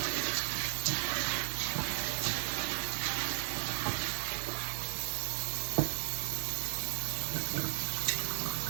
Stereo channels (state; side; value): silent; left; 54 dB below the other